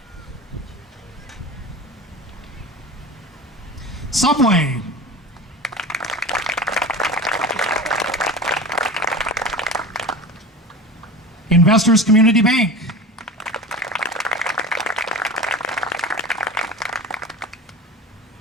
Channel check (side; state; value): both; normal; correlation 0.33